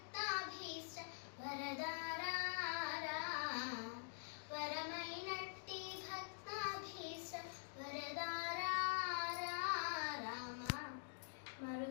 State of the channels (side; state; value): right; silent; digital silence